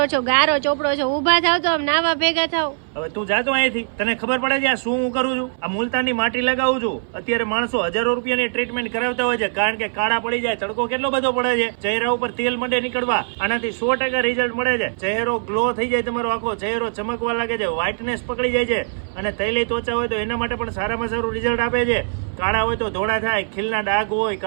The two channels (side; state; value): left; silent; 60 dB below the other